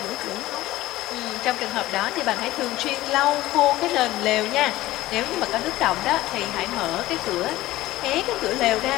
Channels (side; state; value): right; quieter; 16.5 dB